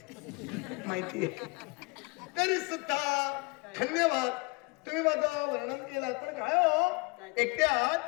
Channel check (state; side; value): quieter; right; 28.7 dB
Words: माहिती आहे. तरी सुद्धा धन्यवाद, तुम्ही माझं वर्णन केलं. पण काय हो,